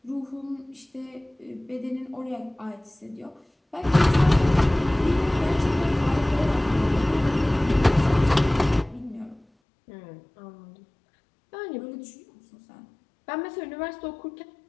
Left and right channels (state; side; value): drops out; right; at 9.5 s